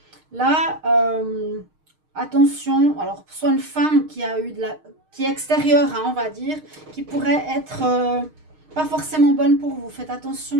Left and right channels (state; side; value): late; left; 6.5 ms